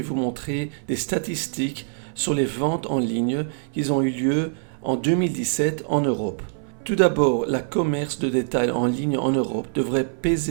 vous montrer des statistiques sur les ventes en ligne qui ont eu lieu en 2017 en Europe. Tout d'abord, le commerce de détail en ligne en Europe devrait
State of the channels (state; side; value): silent; left; 63 dB below the other